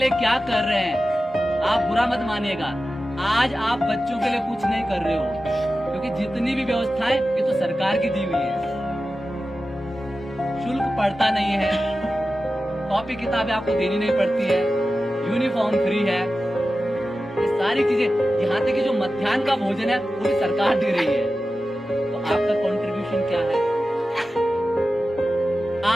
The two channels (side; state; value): both; normal; correlation 0.93